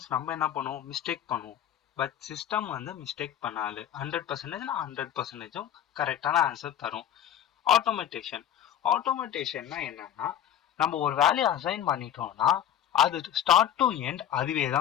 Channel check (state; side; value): quieter; right; 10.5 dB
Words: நம்ம என்ன பண்ணுவோம்? மிஸ்டேக் பண்ணுவோம். பட் சிஸ்டம் மிஸ்டேக் பண்ணாது. 100%னா 100%ம் கரெக்டான ஆன்சர் தரும். ஆட்டோமேட்டேஷன்னா என்னன்னா நம்ம ஒரு வேலையை அசைன் பண்ணிட்டோம்னா அது ஸ்டார்ட் டு எண்ட் அதுவே